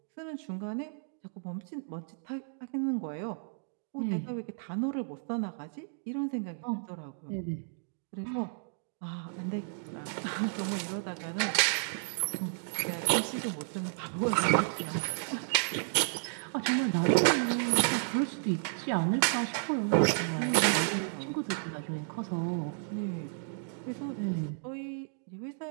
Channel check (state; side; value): silent; left; digital silence